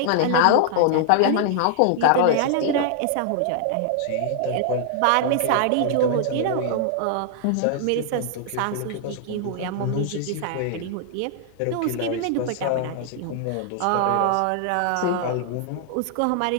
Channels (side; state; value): both; different; correlation -0.01